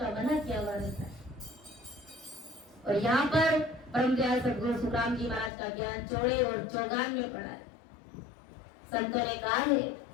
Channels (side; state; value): right; drops out; at 5.5 s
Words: मना किया हुआ रहता है। और यहाँ पर परम दयाल सद्गुरु सुखराम जी महाराज का ज्ञान चौड़े और चौगान में पड़ा है। संतों ने कहा है